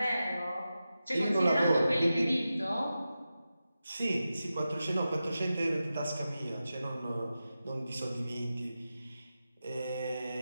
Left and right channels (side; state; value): both; inverted; correlation -0.92